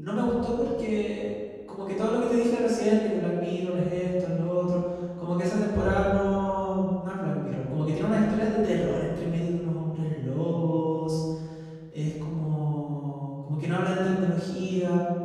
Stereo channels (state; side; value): identical; both; correlation 1.00